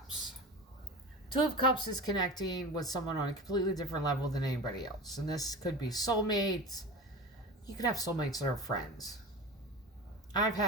Two of Cups is connecting with someone on a completely different level than anybody else. And this could be soulmates. You could have soulmates that are friends. I've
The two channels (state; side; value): normal; both; correlation 0.31